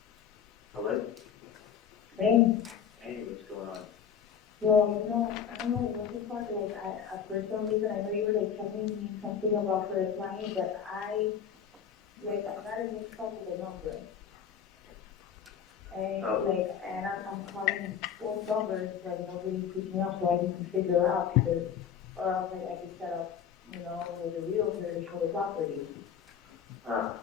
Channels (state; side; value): quieter; right; 8.0 dB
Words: Hello? Hey, Hey, what's going on? well, I don't know what the fuck, like, for some reason, I know you were, like, telling me something about for a client, but I got a mixed up with the number. And, Oh. and I'm calling both numbers, but nobody's picking up, so I need to figure out, because, or else, like, I could set up, with a realtor to show the property. Ah,